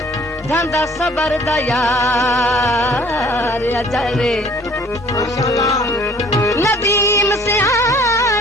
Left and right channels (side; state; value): both; normal; correlation 0.55